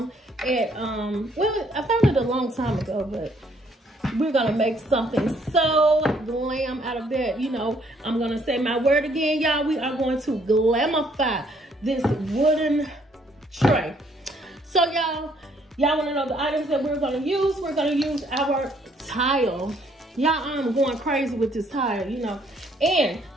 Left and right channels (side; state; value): both; normal; correlation 0.66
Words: at well, I found it a long time ago, but we're gonna make something so glam out of that. You know, I'm gonna say my word again, y'all. We are going to glamify this wooden tray. So y'all want to know the items that we're gonna use? We're gonna use our tile. Y'all, I'm going crazy with this tile, you know. And